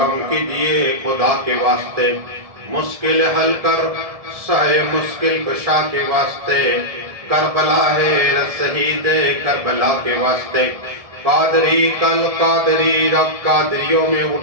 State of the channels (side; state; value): left; late; 1.7 ms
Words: کیجئے خدا کے واسطے، مشکل حل کر سائے مشکل کشا کے واسطے، کربلا ہے شہید کربلا کے واسطے، قادری کل قادری رب قادریوں میں